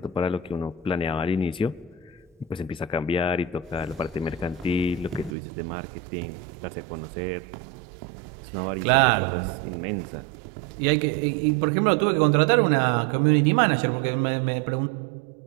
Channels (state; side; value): drops out; left; at 5.4 s